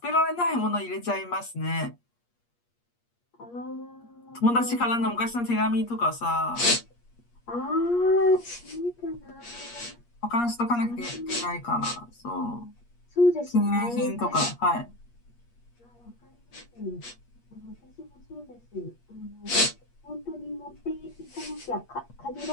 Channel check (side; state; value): right; late; 8.5 ms